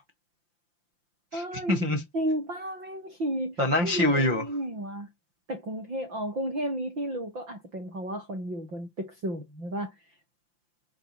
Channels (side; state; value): left; late; 5.8 ms